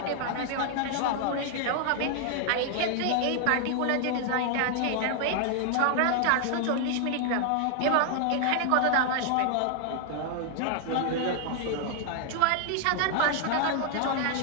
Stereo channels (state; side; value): different; both; correlation 0.00